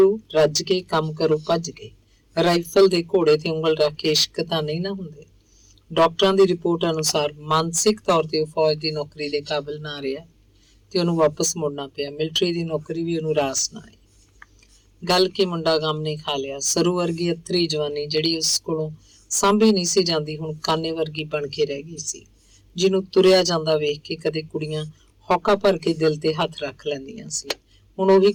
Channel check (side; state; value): both; identical; correlation 1.00